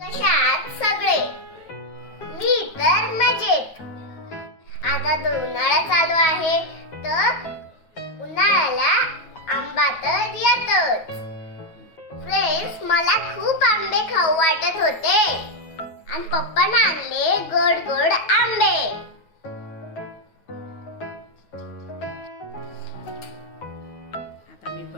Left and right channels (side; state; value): right; late; 9.3 ms